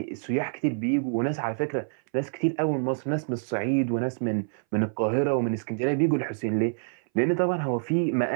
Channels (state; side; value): silent; left; 60 dB below the other